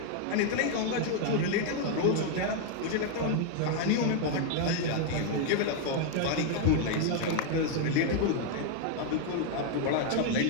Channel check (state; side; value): different; both; correlation 0.00